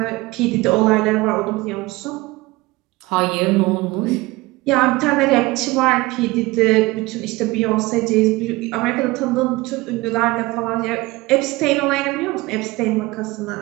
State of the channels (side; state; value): left; quieter; 21.1 dB